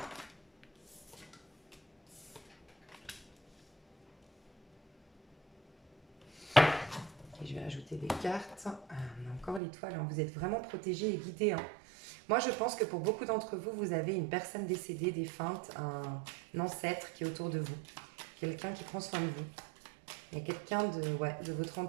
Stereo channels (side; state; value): left; drops out; at 9.6 s